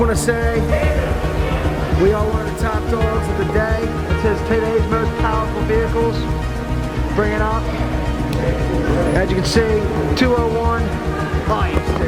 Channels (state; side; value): identical; both; correlation 1.00